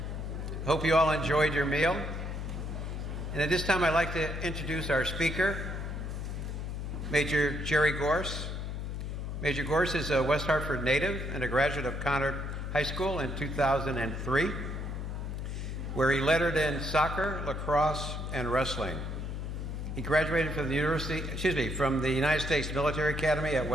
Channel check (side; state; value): left; noise; hum, 4 dB below the sound